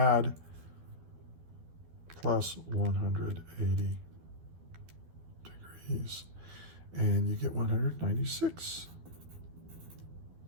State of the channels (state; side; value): late; left; 12 ms